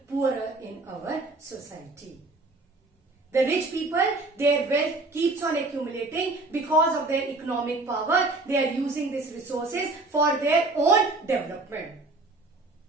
poorer in our society. The rich people, their wealth keeps on accumulating because of their economic power. They are using these resources for their own development.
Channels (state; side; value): quieter; left; 3.2 dB